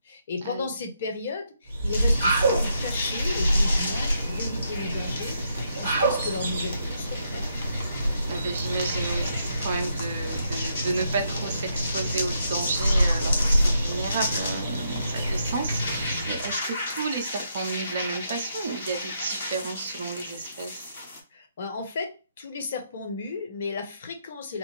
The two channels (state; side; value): inverted; both; correlation -0.77